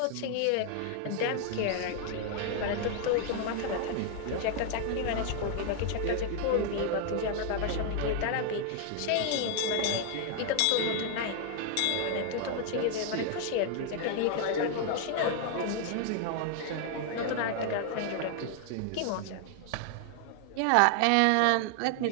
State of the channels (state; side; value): different; both; correlation 0.00